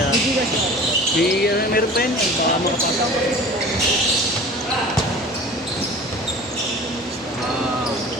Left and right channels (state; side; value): normal; both; correlation 0.40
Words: Sige, meron pa yun. Baka makapasok.